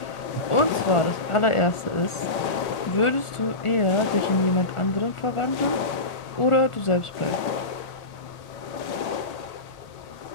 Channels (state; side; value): late; right; 1.4 ms